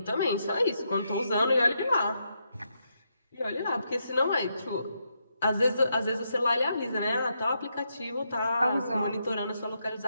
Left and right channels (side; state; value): both; inverted; correlation -0.81